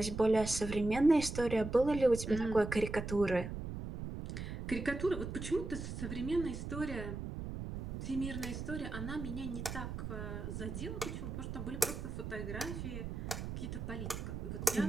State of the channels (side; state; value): right; noise; rumble, 6 dB below the sound